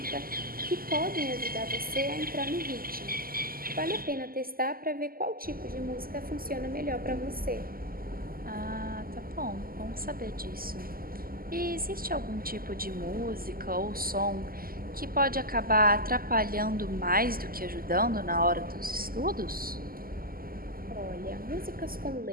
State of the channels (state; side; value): late; left; 0.42 ms